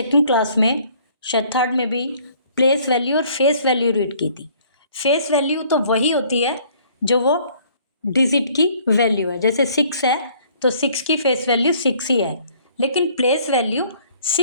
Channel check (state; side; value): inverted; both; correlation -0.59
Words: क्लास में, शायद थर्ड में भी प्लेस वैल्यू और फेस वैल्यू रीड की थी। फेस वैल्यू तो वही होती है जो वो डिजिट की वैल्यू है। जैसे 6 है तो 6 की फेस वैल्यू 6 ही है, लेकिन प्लेस वैल्यू